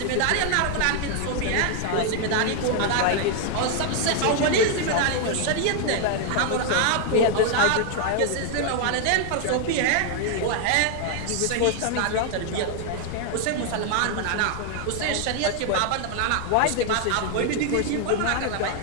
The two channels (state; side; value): different; both; correlation 0.00